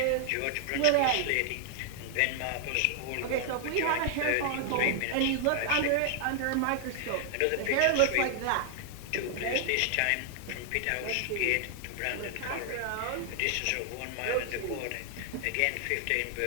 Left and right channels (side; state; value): both; different; correlation 0.00